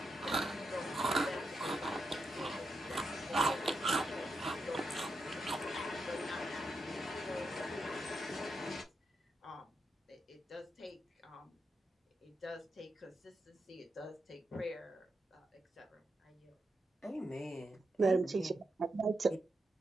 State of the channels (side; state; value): both; normal; correlation 0.85